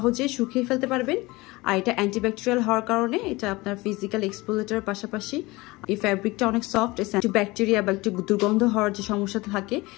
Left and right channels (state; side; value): quieter; right; 21.9 dB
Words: শুকিয়ে ফেলতে পারবেন। আর এটা অ্যান্টিব্যাকটেরিয়াল হওয়ার কারণে এটা আপনার ফিজিক্যাল এক্সপোজারের পাশাপাশি এই ফ্যাব্রিকটা অনেক সফট, একটু ব্যাকটেরিয়া বা একটু দুর্গন্ধ হওয়ার যে সমস্যা থাকে